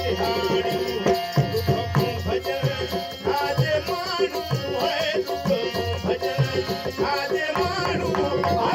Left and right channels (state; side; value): identical; both; correlation 1.00